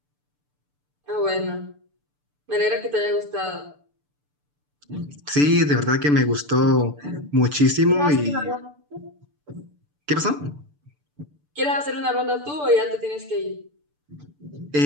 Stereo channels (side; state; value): left; late; 6.8 ms